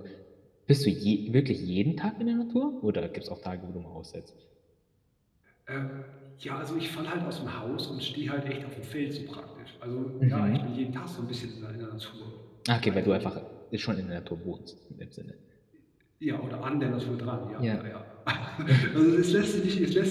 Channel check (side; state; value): both; identical; correlation 1.00